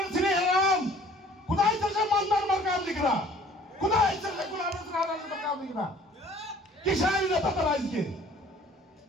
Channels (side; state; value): both; normal; correlation 0.54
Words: ছিল এরকম। কোথায় চলছে মন্দার মার্কা আমলিগরা, কোথায় চলছে গোলামের মার্কা আমলিগরা? কিসের নেতা তারা আজকে